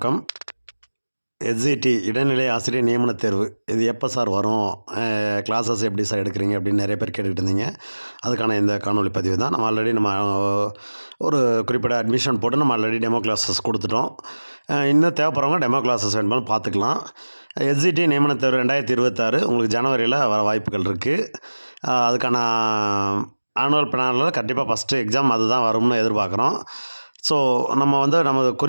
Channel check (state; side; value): inverted; both; correlation -1.00